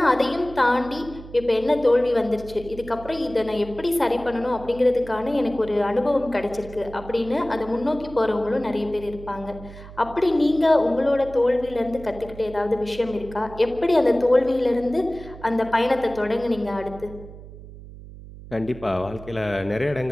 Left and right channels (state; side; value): noise; right; hum, 16 dB below the sound